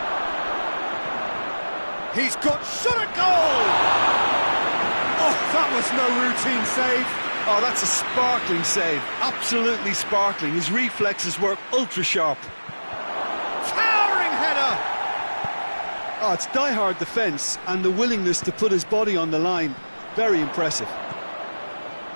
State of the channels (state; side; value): inverted; both; correlation -1.00